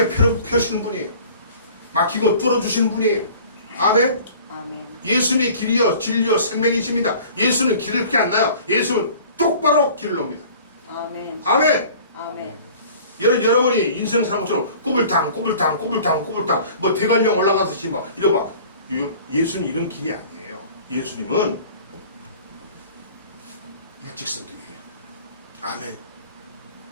펴시는 분이에요. 막히고 뚫어주시는 분이에요. 아멘. 아멘. 예수님이 길이요 진리요 생명이십니다. 예수는 길을 그렇게 안 나요. 예수는 똑바로 길을 놉니다. 아멘. 아멘. 아멘. 여러분이 인생 사는 것처럼 꼬불탕 뭐 대관령 올라가듯이 막 이러봐. 예수는 이런 길이 아니에요. 예수님은 일직선길이에요. 아멘.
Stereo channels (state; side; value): inverted; both; correlation -0.47